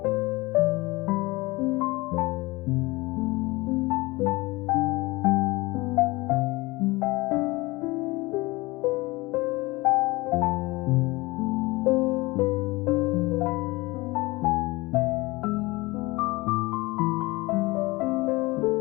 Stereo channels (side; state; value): right; quieter; 22.4 dB